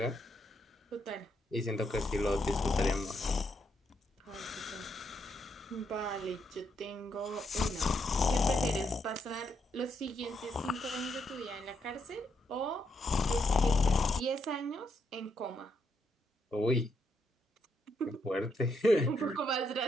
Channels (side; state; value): both; normal; correlation 0.78